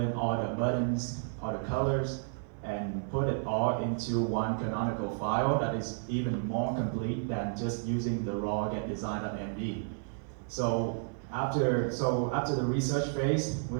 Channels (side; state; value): left; silent; 57 dB below the other